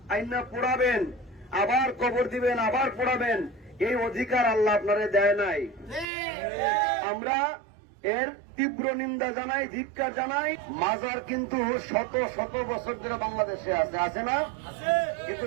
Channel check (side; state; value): left; drops out; at 6.1 s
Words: আইনা পোড়াবেন, আবার কবর দিবেন, আবার পোড়াবেন, এই অধিকার আল্লাহ আপনারে দেয় নাই। আমরা এর তীব্র নিন্দা জানাই, ধিক্কার জানাই। মাজার কিন্তু শত শত বছর ধরে বাংলাদেশে আছে না? কিন্তু